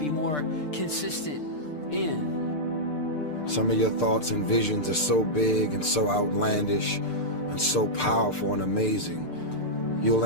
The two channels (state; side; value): late; right; 6.7 ms